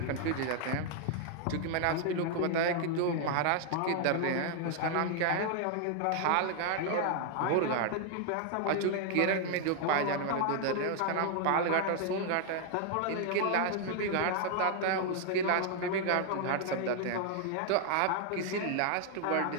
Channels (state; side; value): different; both; correlation 0.00